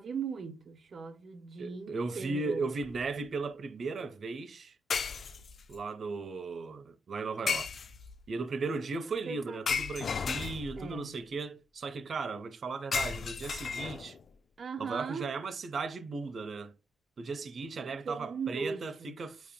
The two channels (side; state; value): both; normal; correlation 0.80